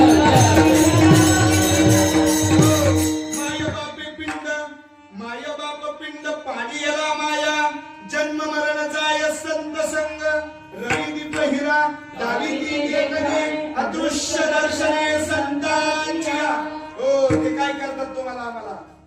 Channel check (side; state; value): both; identical; correlation 1.00